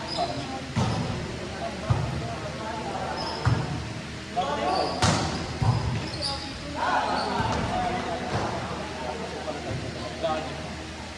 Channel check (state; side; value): identical; both; correlation 1.00